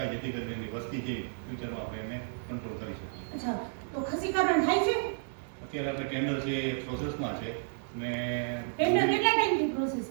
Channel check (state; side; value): silent; left; 57 dB below the other